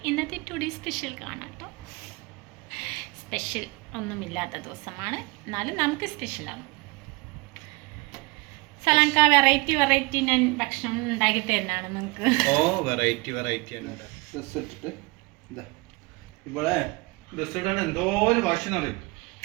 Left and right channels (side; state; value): left; quieter; 25.8 dB